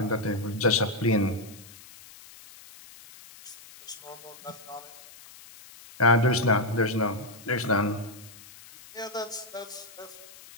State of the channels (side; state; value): left; noise; hiss, 20 dB below the sound